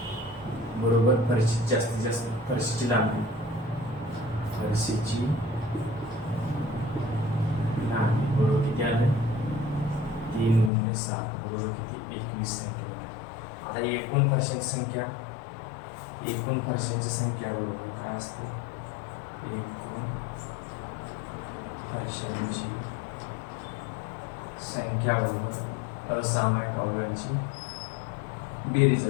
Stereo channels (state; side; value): drops out; right; at 10.7 s